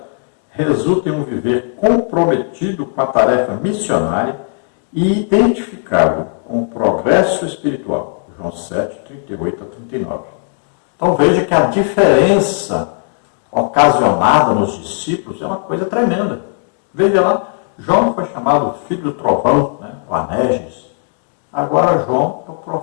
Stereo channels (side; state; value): right; silent; 58 dB below the other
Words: resulta em um viver comprometido com a tarefa missionária e identificado com o progresso espiritual. João 7, 38 a 39. Então veja que a diferença ocasionada nos discípulos é uma coisa tremenda. Veja lá, João foi chamado filho do trovão, o Anerges. Agora João é o